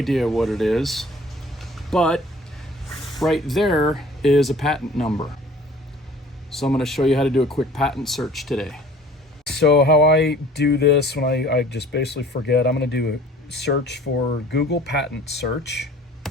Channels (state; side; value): normal; both; correlation 0.49